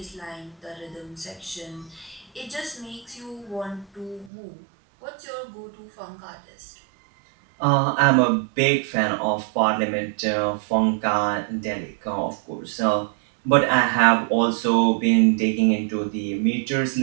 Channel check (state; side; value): drops out; left; at 4.3 s